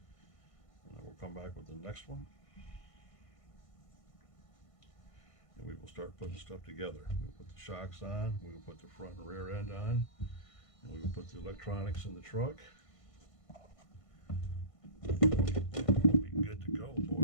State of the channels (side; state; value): right; late; 1.5 ms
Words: then we'll come back with the next one. and we will start putting stuff together. We'll put the shocks on, we will put the front and rear end on, and we will put the electronics in the truck. And we'll be good to go,